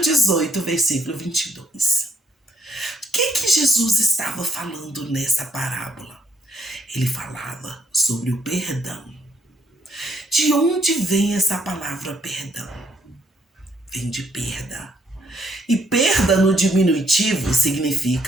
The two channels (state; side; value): normal; both; correlation 0.69